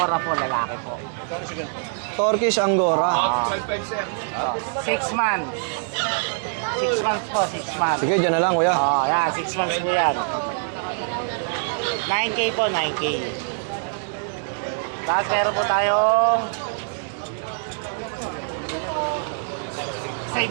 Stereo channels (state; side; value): silent; left; digital silence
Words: po, lalaki po. Turkish Angora. 6 months. 6 months po, 6 months. Sige, dyan na lang, Kuya. Yan, 6 months po yan. 9K po, 9K. Tapos meron po tayong